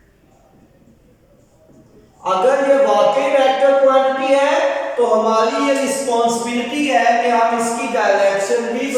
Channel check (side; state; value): both; identical; correlation 1.00